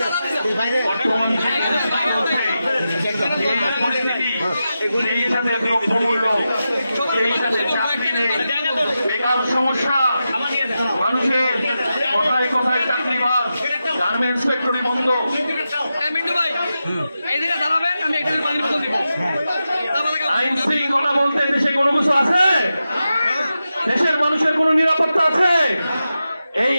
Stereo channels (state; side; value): inverted; both; correlation -0.90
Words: বর্তমান এই সাথে দ্রব্যমূল্য, এই সাথে চাকরি নেই, বেকার সমস্যা, মানুষের কোথায় কোথায় চাকরি বাদ, গার্মেন্টস ফ্যাক্টরি বন্ধ। আইন শৃঙ্খলা বলতে দেশে কোনো কিছু আছে? দেশের মানুষের কোনো নিরাপত্তা আছে? এই